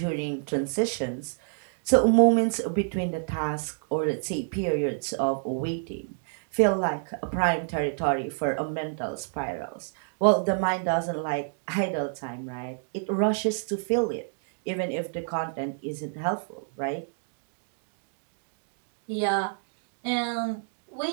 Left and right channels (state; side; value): silent; left; digital silence